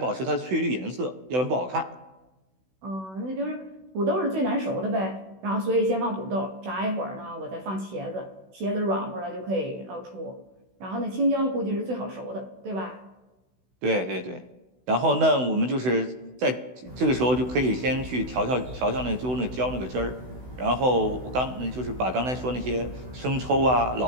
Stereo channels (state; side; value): late; left; 16 ms